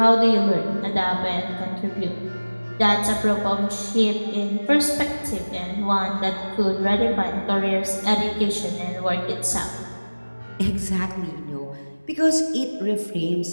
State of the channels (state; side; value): inverted; both; correlation -1.00